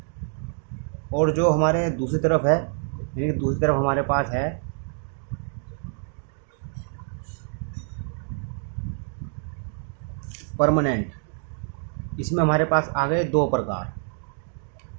और जो हमारे दूसरी तरफ है, यानी कि दूसरी तरफ हमारे पास है परमानेंट, इसमें हमारे पास आ गए 2 प्रकार,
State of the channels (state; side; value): silent; left; 57 dB below the other